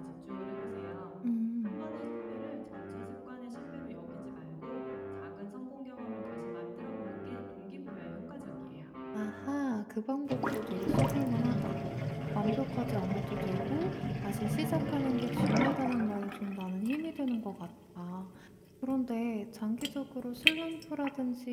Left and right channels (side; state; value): both; identical; correlation 1.00